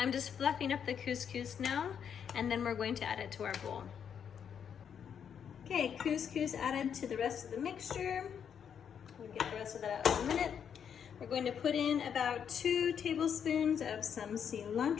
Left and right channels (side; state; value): right; quieter; 7.9 dB